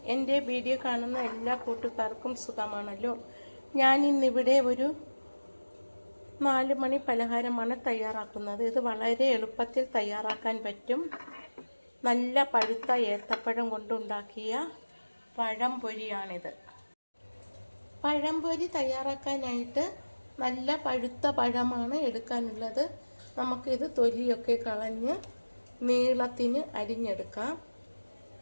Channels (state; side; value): inverted; both; correlation -1.00